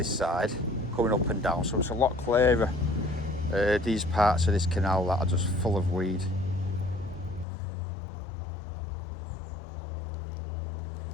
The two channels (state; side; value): drops out; right; at 7.5 s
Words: side coming up and down, so it's a lot clearer. These parts of this canal that are just full of weed.